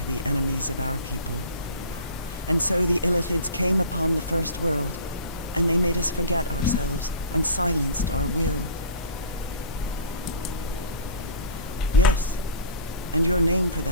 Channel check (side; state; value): both; inverted; correlation -0.39